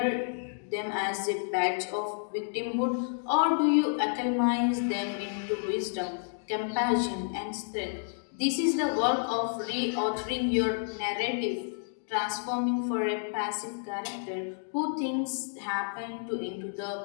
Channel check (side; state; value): right; silent; digital silence